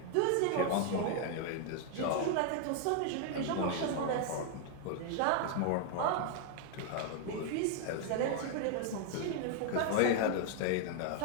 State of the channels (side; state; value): both; different; correlation 0.00